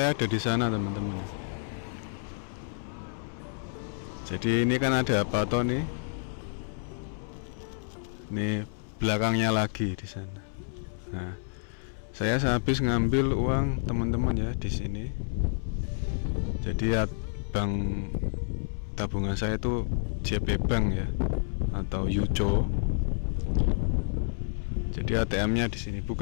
ada di sana teman-teman. Jadi ini kan ada apa toh nih? Nih belakangnya lagi di sana. Nah, saya habis ngambil uang teman-teman ya di sini. Jadi ya, bank tabungan saya itu JP Bank ya, atau Yucho. Jadi ATM-nya di sini.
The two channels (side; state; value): right; silent; 58 dB below the other